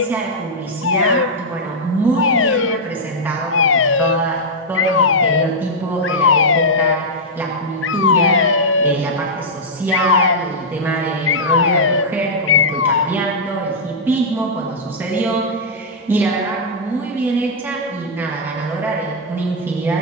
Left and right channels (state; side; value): normal; both; correlation -0.07